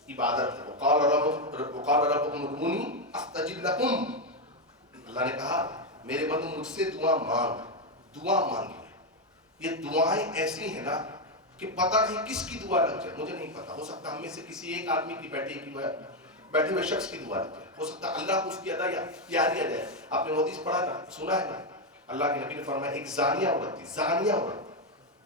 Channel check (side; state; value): both; normal; correlation 0.06